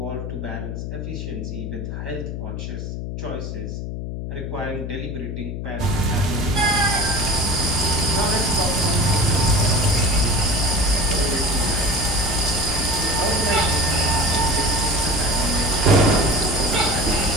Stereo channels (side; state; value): left; noise; hum, 6 dB below the sound